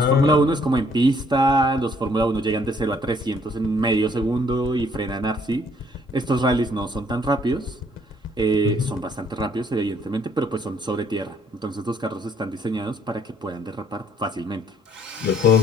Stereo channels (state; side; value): normal; both; correlation 0.64